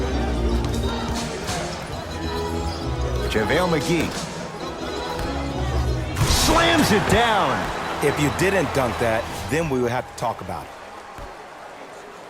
JaVale McGee. Slams it down. If you didn't dunk that, then we would have to talk about it.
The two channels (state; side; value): identical; both; correlation 1.00